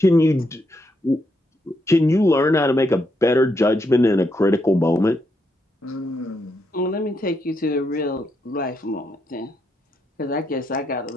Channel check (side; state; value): both; normal; correlation 0.79